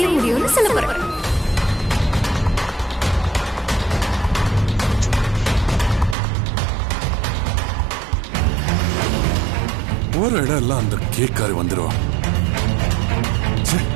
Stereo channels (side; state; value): left; drops out; at 6.2 s